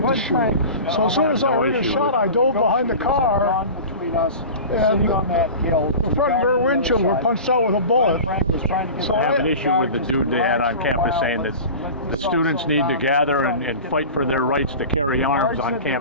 to shoot. So as soon as I heard a shot, I dove behind the car, and the front rear windshield were punched out with a bullet. So I have an issue with the dude they had on campus saying that the students need to gather and fight for their rights to carry arms on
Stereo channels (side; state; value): both; inverted; correlation -0.33